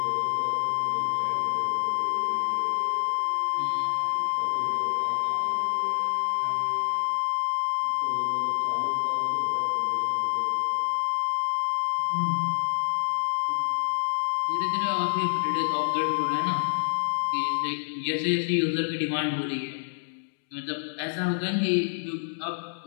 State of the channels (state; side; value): silent; right; 60 dB below the other